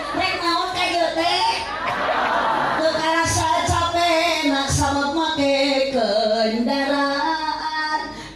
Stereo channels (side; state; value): both; identical; correlation 1.00